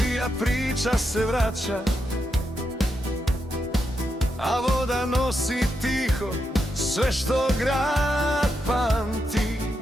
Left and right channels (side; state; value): both; normal; correlation 0.84